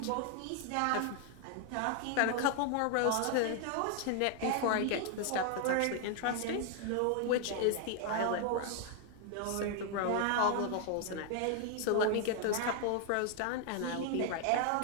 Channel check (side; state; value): both; different; correlation 0.00